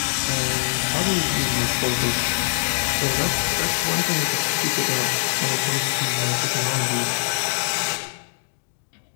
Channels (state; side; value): silent; right; digital silence